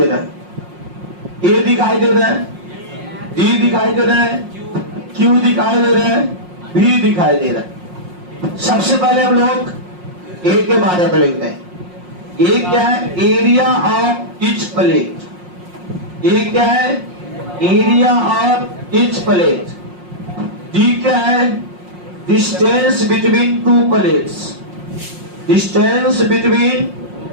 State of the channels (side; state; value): left; late; 5.6 ms